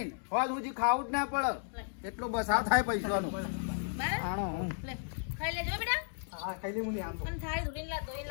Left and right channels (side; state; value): right; silent; digital silence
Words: હોજ સુધી ખાવું જ ના પડે. એટલો બસાવ થાય પૈસાનો. બરાબર આણો લે ખાઈ લેજો બેટા. હા ખાઈ લે મુની આમ તો પણ થાળી ધોઈને